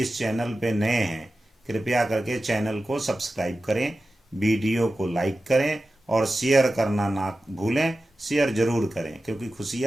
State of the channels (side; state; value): both; normal; correlation 0.94